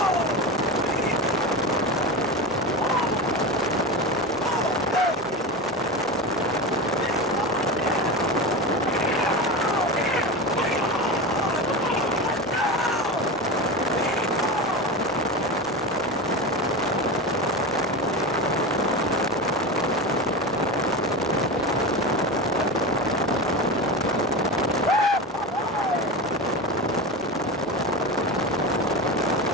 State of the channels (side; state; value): both; normal; correlation 0.23